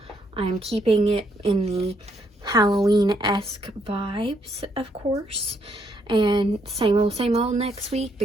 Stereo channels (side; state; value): both; normal; correlation 0.73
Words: keeping it in the Halloween-esque vibes, of course, and same old next week